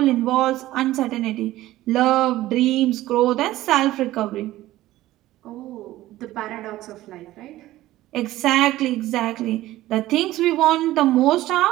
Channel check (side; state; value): left; quieter; 15.9 dB